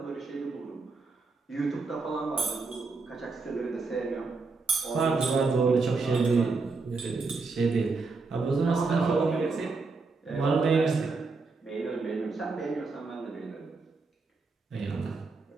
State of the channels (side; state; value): left; quieter; 4.1 dB